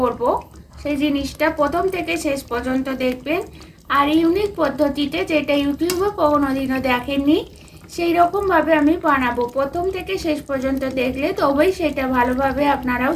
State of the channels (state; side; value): identical; both; correlation 1.00